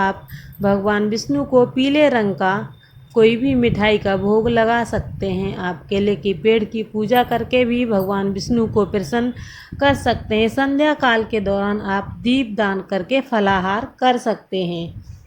भगवान विष्णु को पीले रंग का कोई भी मिठाई का भोग लगा सकते हैं। आप केले के पेड़ की पूजा करके भी भगवान विष्णु को प्रसन्न कर सकते हैं। संध्या काल के दौरान आप दीप दान करके फलाहार कर सकते हैं।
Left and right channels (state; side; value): identical; both; correlation 1.00